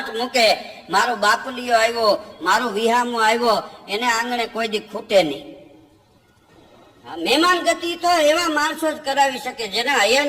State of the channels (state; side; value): identical; both; correlation 1.00